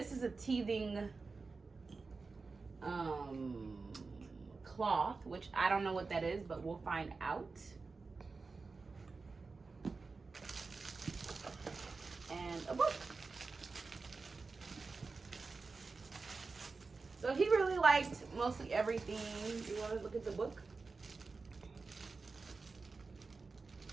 is a teething cloth, which I don't know what that is, but we'll find out. And a book. So he really liked mostly everything. You want to look at the book?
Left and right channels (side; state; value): left; quieter; 4.2 dB